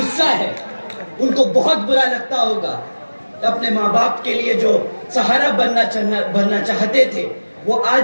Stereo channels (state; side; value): inverted; both; correlation -1.00